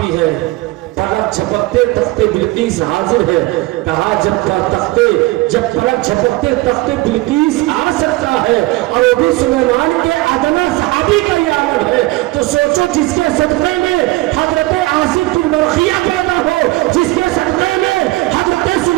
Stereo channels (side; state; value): left; quieter; 20.5 dB